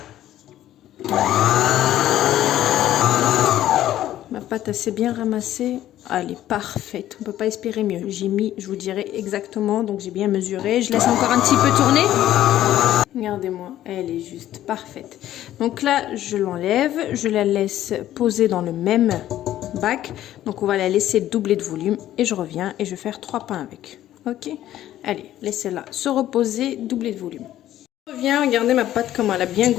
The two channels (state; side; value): quieter; right; 12.9 dB